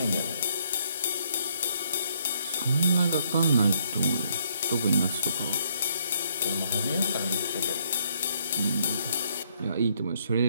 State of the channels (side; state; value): both; inverted; correlation -0.70